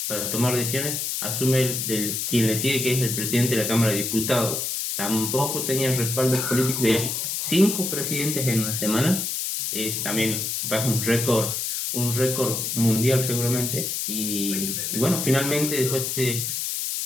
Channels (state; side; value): noise; left; hiss, 2 dB below the sound